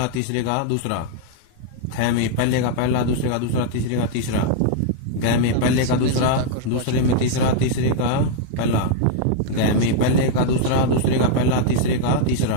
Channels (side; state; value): both; different; correlation -0.01